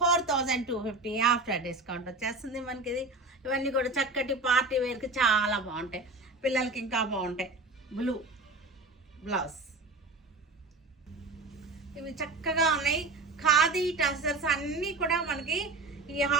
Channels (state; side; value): quieter; left; 3.2 dB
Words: after discount వచ్చేస్తుంది మనకి ఇది. ఇవన్నీ కూడా చక్కటి పార్టీ వేర్కి చాలా బాగుంటాయి, పిల్లలకి ఇంకా బాగుంటాయి. బ్లూ బ్లౌజ్, ఇవి చక్కగా ఉన్నాయి. ఖాదీ టసర్స్ అన్నీ కూడా మనకి ఈ